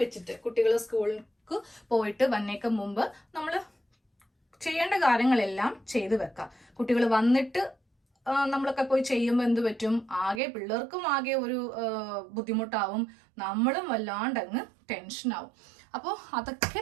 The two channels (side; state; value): left; drops out; at 10.4 s